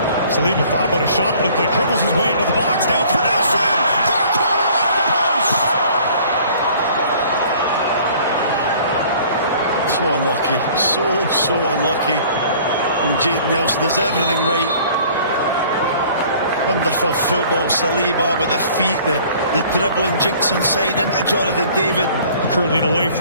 Saliba thought about a shot. It looked like dribbles his way into the box. Now it's for Nelson. Far corner off the post. So unlucky. So unlucky from Jayden Nelson. Does everything right. Wonderful football. Saliba with the feet, the dribbling, jinks inside into Jonathan David. Curling away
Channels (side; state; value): both; inverted; correlation -0.52